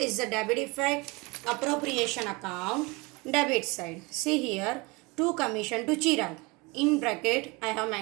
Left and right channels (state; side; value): quieter; left; 25.6 dB